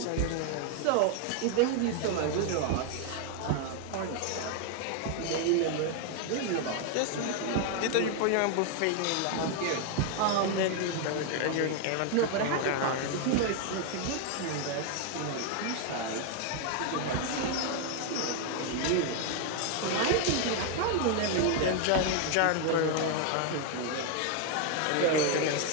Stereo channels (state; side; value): different; both; correlation 0.01